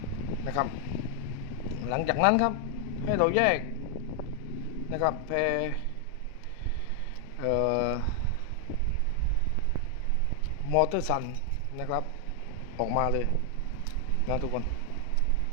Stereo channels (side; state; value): both; different; correlation 0.00